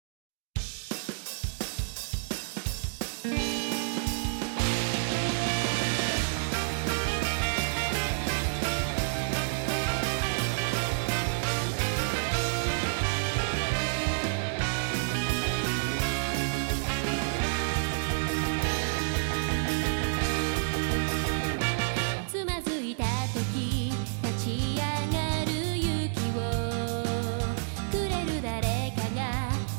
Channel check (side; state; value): left; silent; digital silence